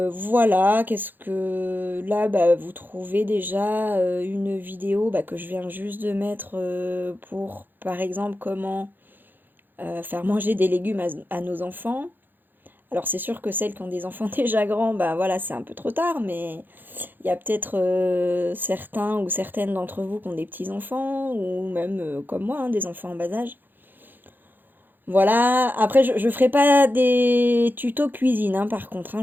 qu'est-ce que... Là, bah, vous trouvez déjà une vidéo bah, que je viens juste de mettre pour, par exemple, comment faire manger des légumes à nos enfants. Alors c'est sûr que celles qui ont des enfants déjà grands, bah voilà, c'est un peu trop tard, mais il y a peut-être certains ou certaines d'entre vous qui ont des petits-enfants, ou même comme moi, hein, des enfants en bas âge. Voilà, après je ferai pas des tutos cuisine, hein, par contre, hein,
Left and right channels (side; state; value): left; late; 0.091 ms